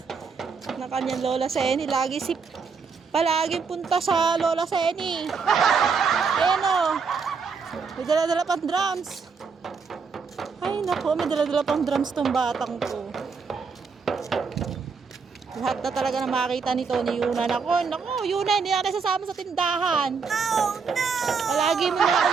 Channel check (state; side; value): quieter; left; 5.4 dB